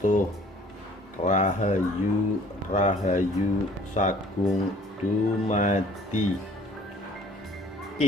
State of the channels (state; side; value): normal; both; correlation 0.54